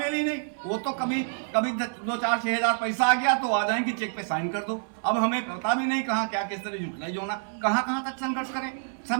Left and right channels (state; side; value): silent; left; 60 dB below the other